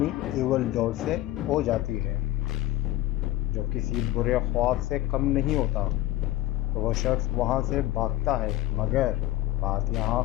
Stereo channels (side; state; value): right; quieter; 15.6 dB